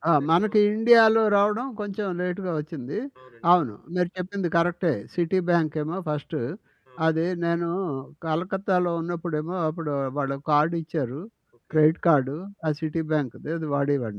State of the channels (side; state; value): both; identical; correlation 1.00